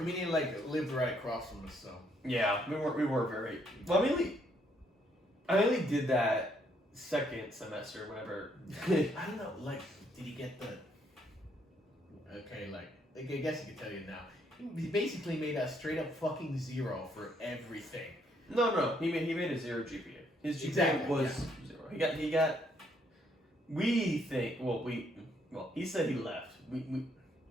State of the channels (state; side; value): normal; both; correlation 0.71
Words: mean, he like lived right across from us, so. Yeah, we were very, well, I mainly did that second semester, whenever. I don't know, like, did he get the... Okay, like I guess I can tell you now. He basically made a straight up fucking 0 for everything. No, he made a 0 GPA. His GPA Exactly, was 0. He got. We think. Well, he said he left.